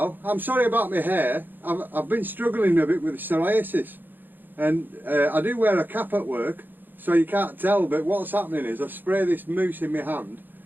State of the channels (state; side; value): late; left; 0.091 ms